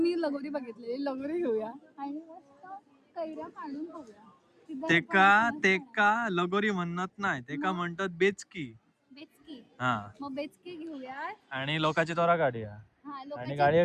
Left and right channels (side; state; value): both; identical; correlation 1.00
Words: लगोरी बघितलेली, लगोरी घेऊया आणि मस्त कैऱ्या काढून खाऊया. तेका लगोरी म्हणत नाही, तेका म्हणतात बेचकी. बेचकी. हा, मग बेचकी घेऊया आणि लोकांची तोरा काढूया हा आणि लोकांची.